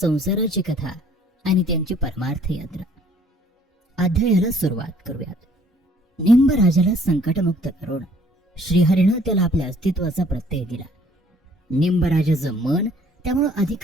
कथा आणि त्यांची परमार्थ यात्रा. अध्यायाला सुरुवात करूयात. निंबराजाला संकटमुक्त करून श्रीहरीनं त्याला आपल्या अस्तित्वाचा प्रत्यय दिला. निंबराजाचं मन त्यामुळे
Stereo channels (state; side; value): normal; both; correlation 0.59